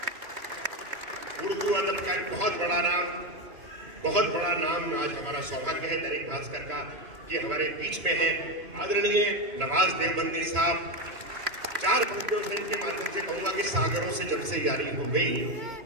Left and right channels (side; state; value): left; late; 3.0 ms